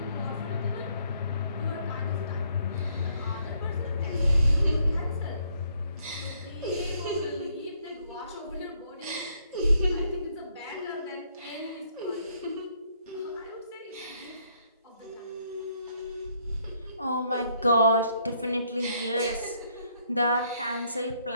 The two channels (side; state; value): both; inverted; correlation -0.70